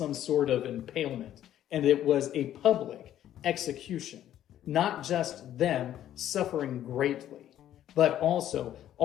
sort of impalement, and it was a public execution. Not just them suffering greatly, but also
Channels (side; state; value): right; quieter; 11.7 dB